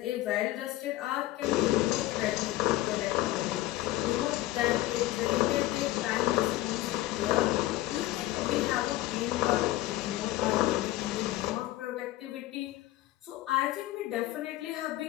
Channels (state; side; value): quieter; right; 16.2 dB